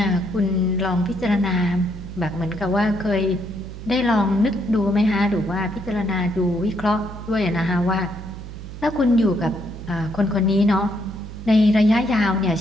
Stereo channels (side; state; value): right; noise; hum, 11 dB below the sound